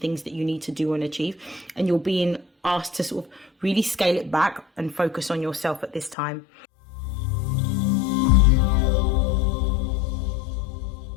that you need to do and achieve. And you're being asked to sort of really scale it back and focus on yourself at this time.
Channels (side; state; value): right; drops out; at 6.2 s